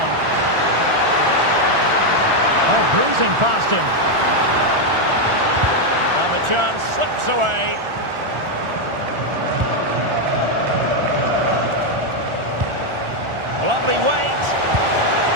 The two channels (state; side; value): late; left; 1.4 ms